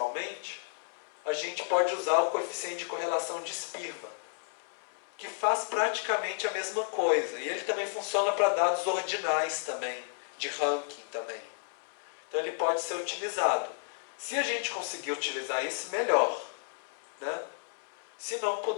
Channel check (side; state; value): right; silent; 56 dB below the other